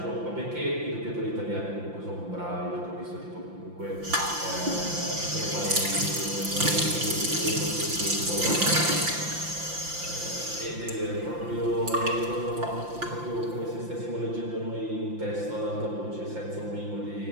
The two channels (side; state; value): left; late; 5.8 ms